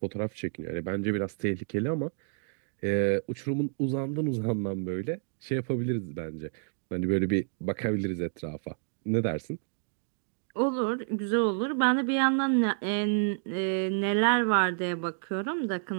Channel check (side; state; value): left; silent; digital silence